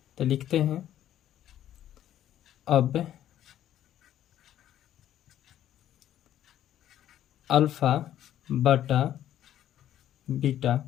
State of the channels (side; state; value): right; quieter; 11.6 dB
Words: तो लिखते हैं अब अल्फा बटा बीटा